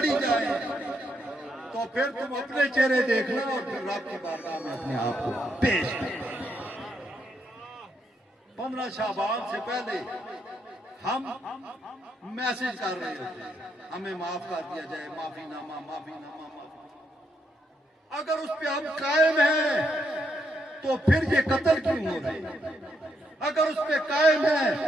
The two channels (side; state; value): both; normal; correlation 0.77